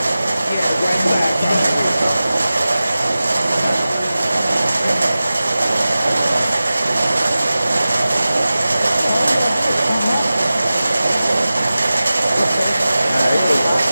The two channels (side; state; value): both; inverted; correlation -0.96